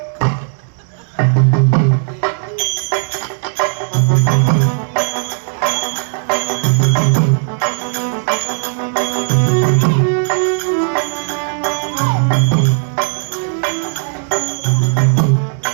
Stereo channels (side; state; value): left; silent; digital silence